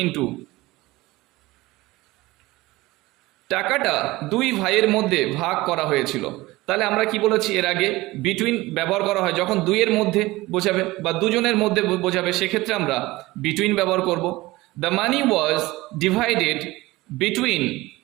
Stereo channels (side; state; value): left; quieter; 19.7 dB